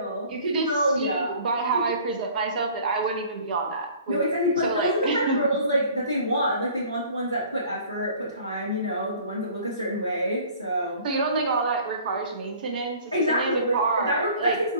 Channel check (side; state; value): both; inverted; correlation -0.50